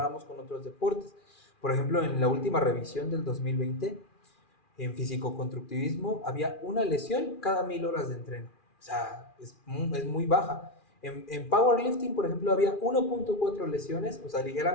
con otros deportes. Por ejemplo, en la última revisión del 2020, en físico-constructivismo, había una lesión cada 1000 horas de entreno. O sea, es muy baja. En powerlifting, por ejemplo, había 1.4 lesiones, o sea,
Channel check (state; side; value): late; right; 2.4 ms